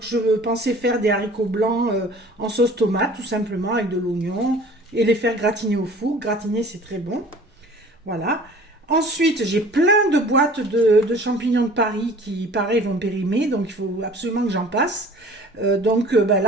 je pensais faire des haricots blancs en sauce tomate, tout simplement avec de l'oignon, et les faire gratiner au four. Gratiner c'est très bon, voilà. Ensuite, j'ai plein de boîtes de champignons de Paris qui, pareil, vont périmer. Donc, il faut absolument que j'en passe. Donc,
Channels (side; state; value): both; normal; correlation 0.47